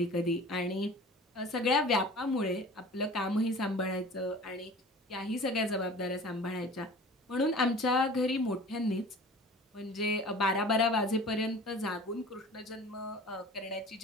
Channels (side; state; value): both; normal; correlation 0.42